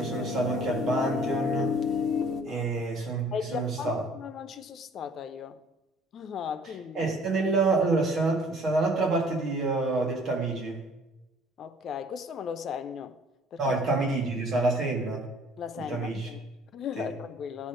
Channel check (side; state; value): both; normal; correlation 0.54